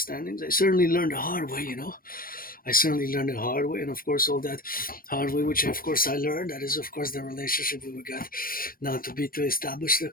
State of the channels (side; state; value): right; late; 0.42 ms